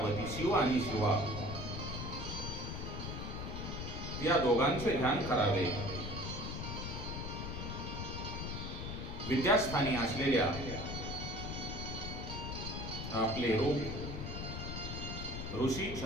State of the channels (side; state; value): left; noise; rumble, 5 dB below the sound